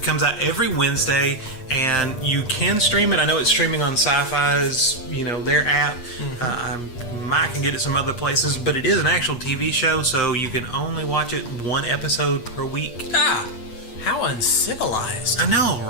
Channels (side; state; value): right; late; 8.4 ms